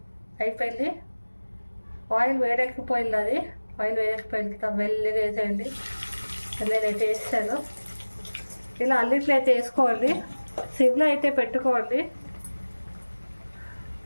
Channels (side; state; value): both; inverted; correlation -1.00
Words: అయిపోయింది. ఆయిల్ వేడెక్కిపోయింది. అది ఆయిల్ వేడెక్కిపోయింది. మెల్లిగా వేసేయండి. నేనైతే వేసాను. ఇలా అన్నిట్లో అయితే వేసుకోండి. సిమ్లో అయితే పెట్టుకోండి.